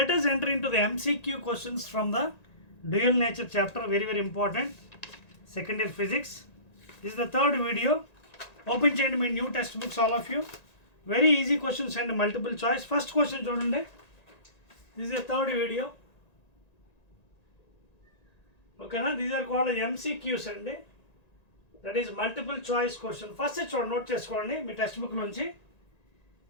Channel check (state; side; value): late; right; 1.9 ms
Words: us enter into the MCQ questions from the dual nature chapter, very important, second year physics. This is the third video. Open చేయండి మీ new textbooks all of you. Very easy questions and multiple choice. First question చూడండి. This is the third video. Okay na, these are called MCQs అండి. That is multiple choice question. First చూడండి, నోట్ చేసుకోండి మీ text book నుంచి.